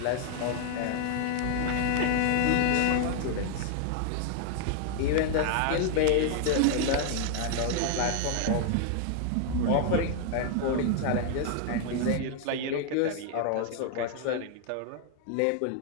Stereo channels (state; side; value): different; both; correlation 0.00